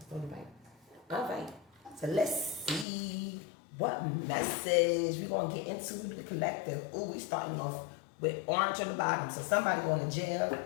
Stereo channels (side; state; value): right; drops out; at 2.9 s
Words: only right. All right. So let's see what message we're going to get into the collective. Ooh, we starting off with orange on the bottom. So somebody going to jail